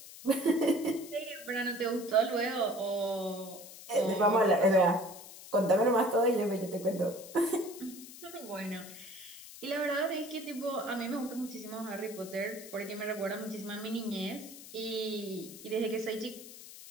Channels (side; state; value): left; noise; hiss, 15 dB below the sound